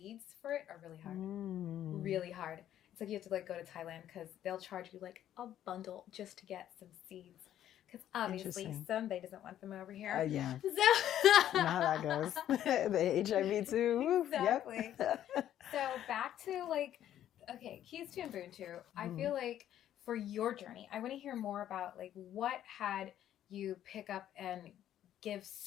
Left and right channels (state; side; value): quieter; right; 11.4 dB